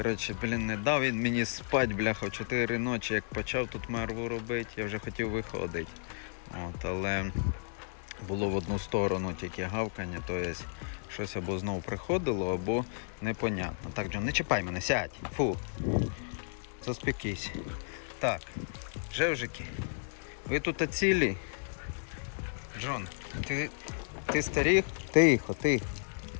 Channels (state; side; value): silent; right; digital silence